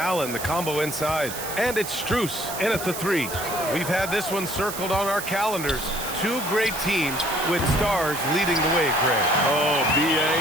the combo inside. And it's Strus in at the 3. We've had this one circled on our calendars. Two great teams with stars leading the way, Greg. Oh, BA,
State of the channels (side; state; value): right; noise; hiss, 8 dB below the sound